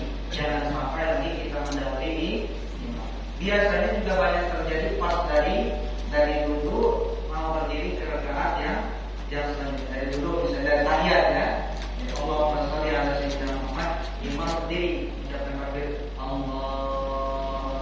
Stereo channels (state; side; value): identical; both; correlation 1.00